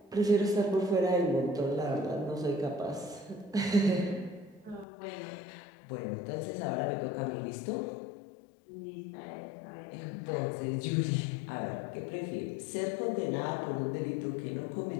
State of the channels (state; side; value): drops out; right; at 4.9 s